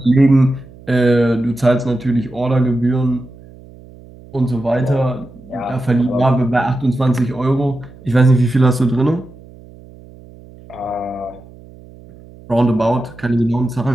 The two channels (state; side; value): noise; right; hum, 21 dB below the sound